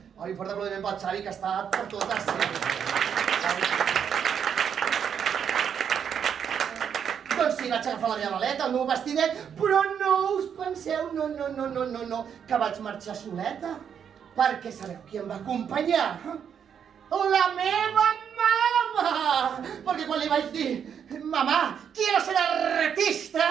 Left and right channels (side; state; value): left; quieter; 7.9 dB